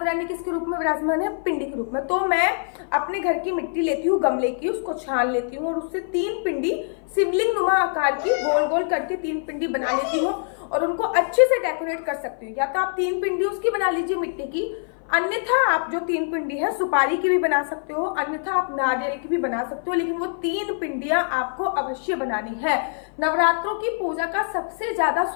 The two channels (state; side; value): silent; right; 57 dB below the other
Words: रानी किसके रूप में विराजमान है, पिंडी के रूप में। तो मैं अपने घर की मिट्टी लेती हूँ, गमले की, उसको छान लेती हूँ और उससे 3 पिंडी शिवलिंग नुमा आकार की गोल गोल करके 3 पिंडी बना लेती हूँ और उनको अच्छे से डेकोरेट कर सकती हूँ। या तो आप 3 पिंडी उसकी बना लीजिए मिट्टी की, अन्यथा आप जो 3 पिंडी है सुपारी की भी बना सकते हो, अन्यथा आप नारियल की भी बना सकते हो, लेकिन वो 3 पिंडियां आपको अवश्य बनानी है। नवरात्रों की पूजा का सबसे ज्यादा